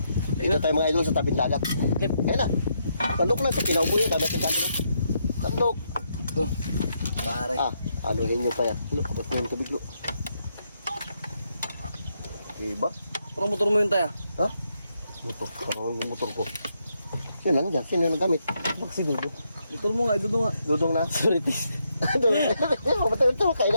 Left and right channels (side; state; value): both; inverted; correlation -0.79